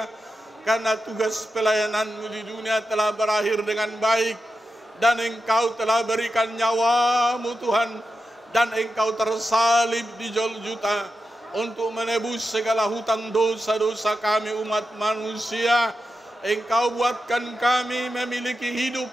karena tugas pelayanan-Mu di dunia telah berakhir dengan baik, dan Engkau telah berikan nyawa-Mu Tuhan, dan Engkau tersalib di Golgota untuk menebus segala hutang dosa-dosa kami umat manusia. Engkau buatkan kami memiliki hidup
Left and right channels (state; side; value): normal; both; correlation 0.89